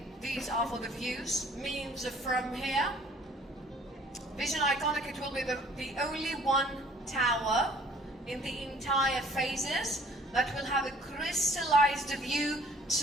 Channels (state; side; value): normal; both; correlation 0.56